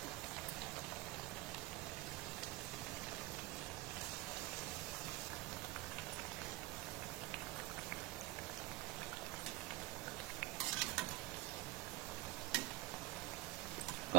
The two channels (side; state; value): left; quieter; 18.4 dB